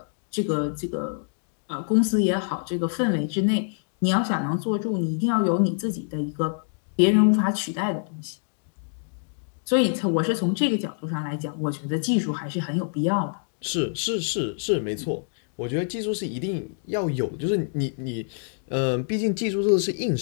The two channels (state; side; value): silent; right; digital silence